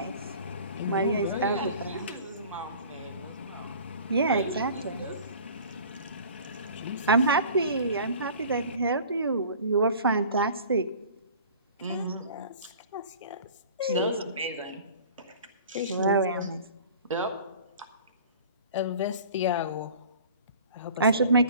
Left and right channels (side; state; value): both; inverted; correlation -0.44